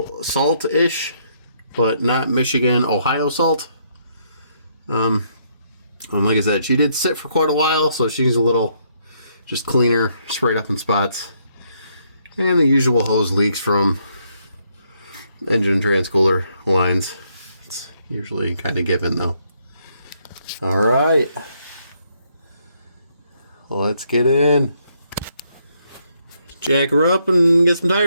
salt-ish, but not Michigan, Ohio salt. And like I said, she did sit for quite a while, so she's a little just cleaner, sprayed up in spots. And the usual hose leaks from engine and transcooler lines. It's usually kind of given though. Alright. Let's get in. Jack her up and get some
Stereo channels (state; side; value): inverted; both; correlation -0.73